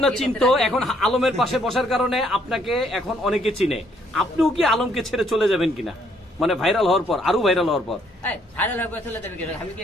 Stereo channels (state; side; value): normal; both; correlation 0.68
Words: না চিনতো, এখন আলমের পাশে বসার কারণে আপনাকে এখন অনেকে চিনে। আপনিও কি আলমকে ছেড়ে চলে যাবেন কিনা, মানে ভাইরাল হওয়ার পর, আরো ভাইরাল হওয়ার পর? ভাইরাল হয়ে চলে যাবে কিনা? আমি কি